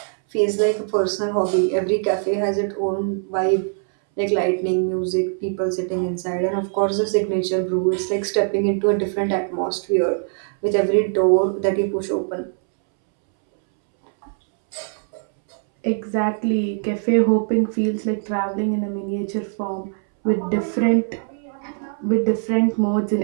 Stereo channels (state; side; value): silent; left; 64 dB below the other